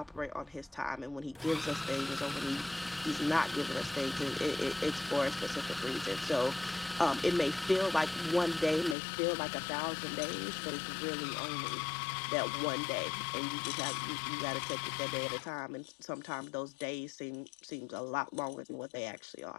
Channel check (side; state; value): right; drops out; at 9.0 s